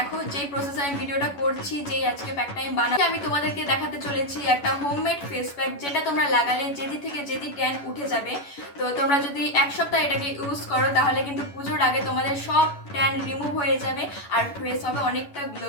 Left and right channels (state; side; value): late; right; 11 ms